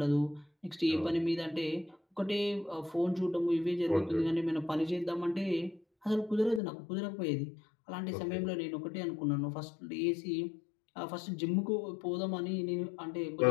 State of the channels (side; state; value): right; drops out; at 6.6 s